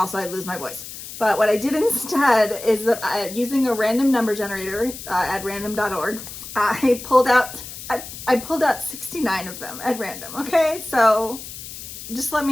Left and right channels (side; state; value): left; noise; hiss, 12 dB below the sound